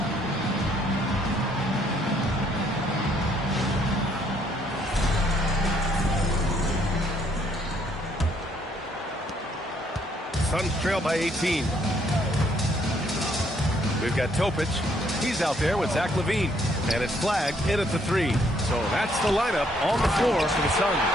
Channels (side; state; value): both; normal; correlation 0.67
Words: Suns trail by 18. We've got Topic. He's out there with Zach LaVine. And it's flagged in at the three. So that's the lineup on the floor for the Suns.